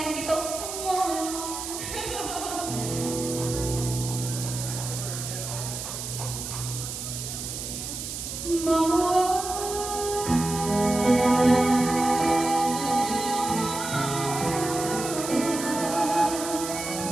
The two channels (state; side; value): noise; right; hiss, 6 dB below the sound